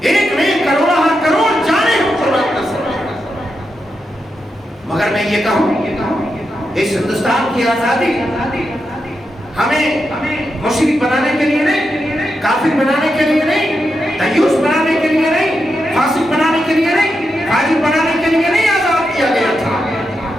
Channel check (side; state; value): both; normal; correlation 0.86